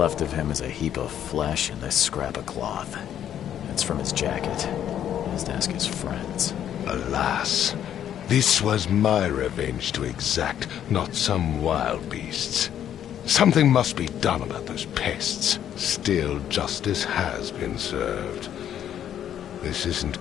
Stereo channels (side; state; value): right; quieter; 10.2 dB